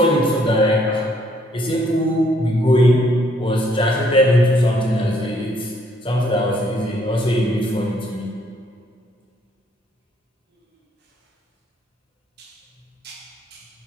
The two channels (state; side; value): normal; both; correlation 0.67